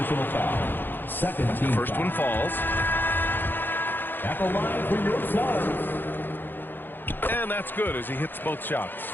foul. Second team First foul. one falls. At the line for your Suns. And that's good as he hits both shots.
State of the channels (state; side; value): late; right; 0.095 ms